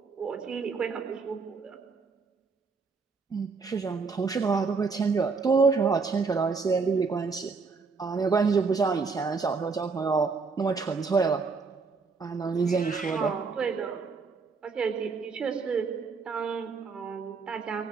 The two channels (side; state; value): left; quieter; 4.7 dB